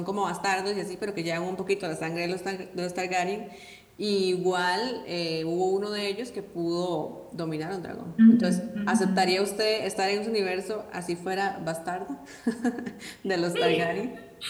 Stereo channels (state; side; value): identical; both; correlation 1.00